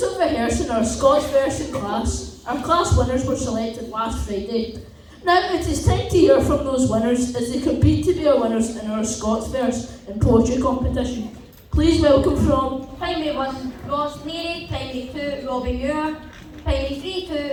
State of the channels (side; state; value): both; identical; correlation 1.00